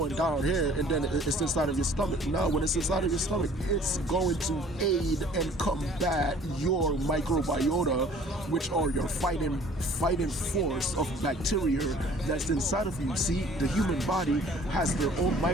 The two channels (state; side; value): normal; both; correlation 0.52